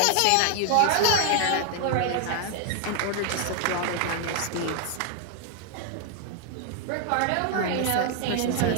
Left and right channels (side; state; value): both; different; correlation 0.00